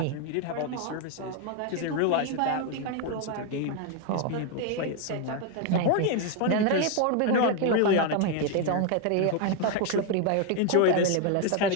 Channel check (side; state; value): both; different; correlation 0.01